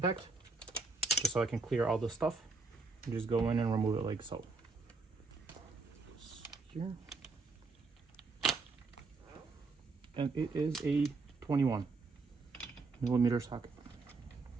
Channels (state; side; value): quieter; left; 4.0 dB